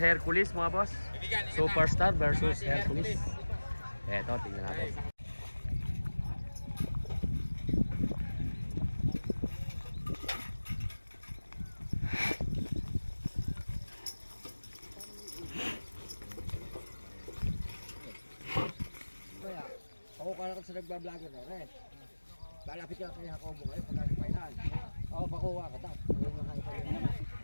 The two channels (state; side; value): inverted; both; correlation -1.00